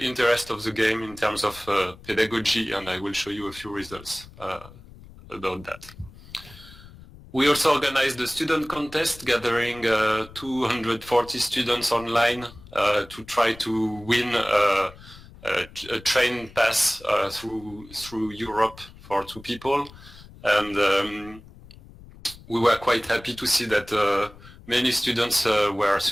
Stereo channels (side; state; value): left; noise; rumble, 20 dB below the sound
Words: interest of the game in terms of pedagogy, and I will show you a few results about that. We also organized a student contest, gathering 240 students online to try to win a train pass through Europe for 2 people. And we were quite happy to see that many students were